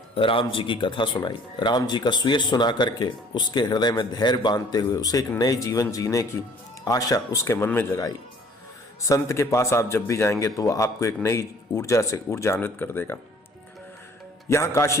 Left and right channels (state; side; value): normal; both; correlation 0.55